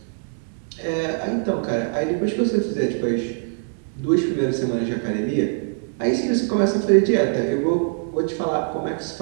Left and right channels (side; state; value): left; silent; digital silence